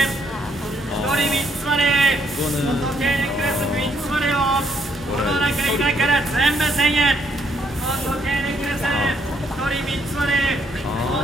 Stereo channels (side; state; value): both; normal; correlation 0.70